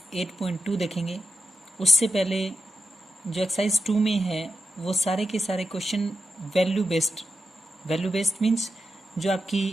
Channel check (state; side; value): normal; both; correlation 0.91